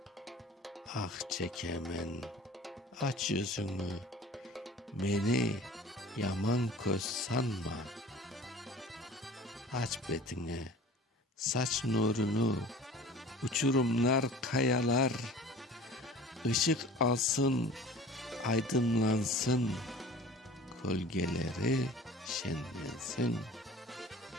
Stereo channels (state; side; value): normal; both; correlation 0.44